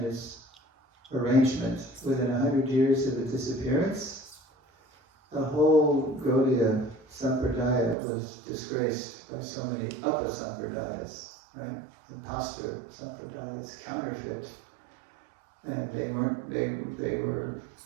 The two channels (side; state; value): left; drops out; at 8.0 s